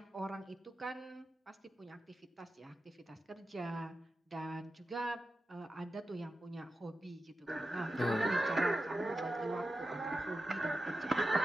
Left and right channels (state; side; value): normal; both; correlation 0.91